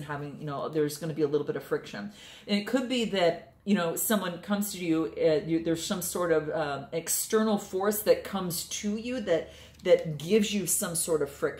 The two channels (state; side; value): identical; both; correlation 1.00